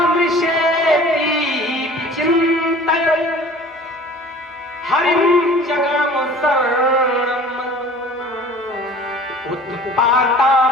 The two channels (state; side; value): normal; both; correlation 0.46